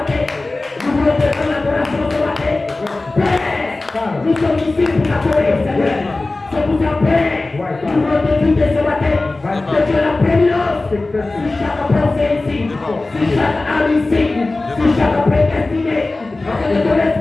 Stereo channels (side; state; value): right; quieter; 3.2 dB